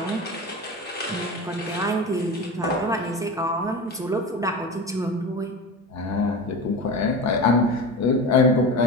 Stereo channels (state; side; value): normal; both; correlation 0.28